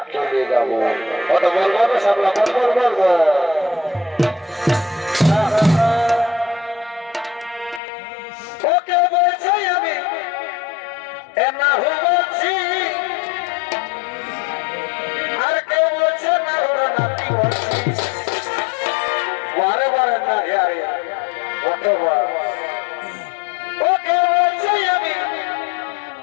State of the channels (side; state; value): right; drops out; at 7.8 s